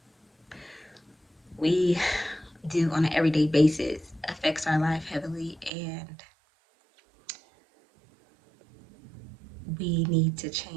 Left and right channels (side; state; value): left; drops out; at 5.7 s